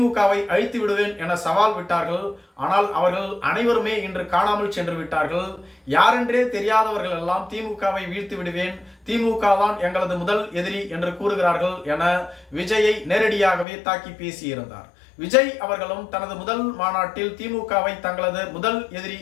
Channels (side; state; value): right; drops out; at 13.7 s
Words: அழித்து விடுவேன் என சவால் விட்டார்கள். ஆனால் அவர்கள் அனைவருமே இன்று காணாமல் சென்று விட்டார்கள். யாரென்றே தெரியாதவர்கள் எல்லாம் திமுகவை வீழ்த்து விடுவேன், திமுக தான் எங்களது முதல் எதிரி என்று கூறுகிறார்கள் என விஜயை நேரடியாகவே தாக்கி பேசியிருந்தார். விஜய் அவர்களும் தனது முதல் மாநாட்டில் திமுகவை தங்களது முதல் எதிரி